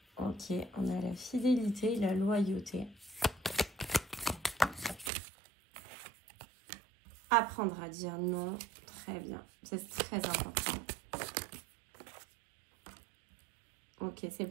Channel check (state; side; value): drops out; left; at 5.1 s